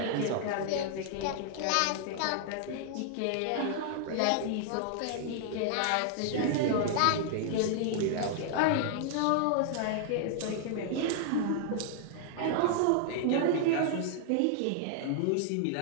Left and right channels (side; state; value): both; different; correlation 0.00